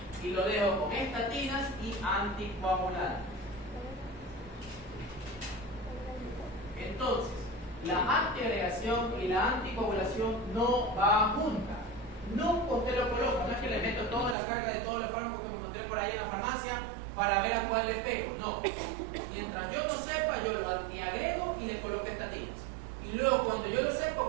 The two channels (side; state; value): left; drops out; at 14.4 s